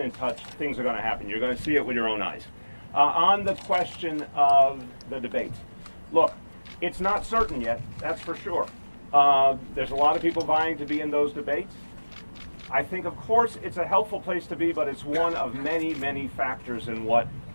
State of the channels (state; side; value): inverted; both; correlation -1.00